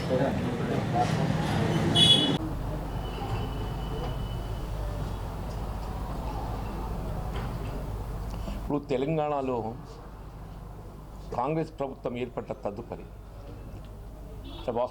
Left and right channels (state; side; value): identical; both; correlation 1.00